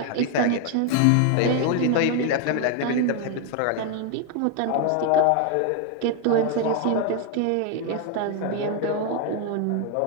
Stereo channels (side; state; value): both; different; correlation 0.00